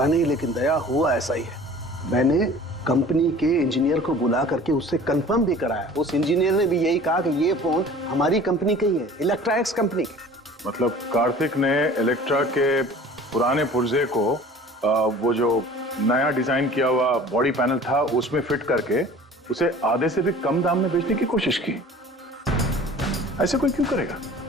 नहीं, लेकिन दया हुआ ऐसा ही है। मैंने कंपनी के इंजीनियर को बुला करके उससे कंफर्म भी कराया। उस इंजीनियर ने भी यही कहा कि ये फोन हमारी कंपनी का ही है, इलेक्ट्रा एक्स कंपनी के। मतलब कार्तिक ने इलेक्ट्रा के पुराने पुर्जे को वो जो नया डिजाइन किया हुआ बॉडी पैनल था उसमें फिट करके उसे आधे से भी कम दाम में बेचने की कोशिश की। ऐसे कोई क्यों करेगा?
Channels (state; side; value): normal; both; correlation 0.45